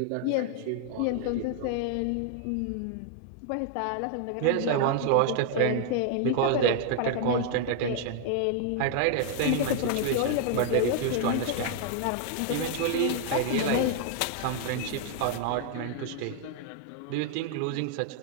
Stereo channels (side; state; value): both; different; correlation 0.00